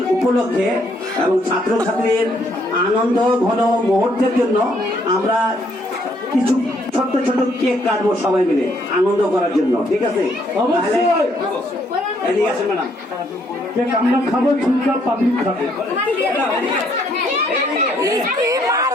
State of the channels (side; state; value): both; normal; correlation 0.69